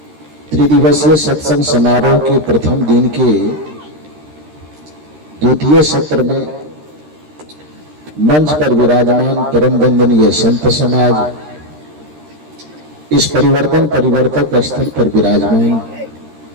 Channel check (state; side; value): late; left; 13 ms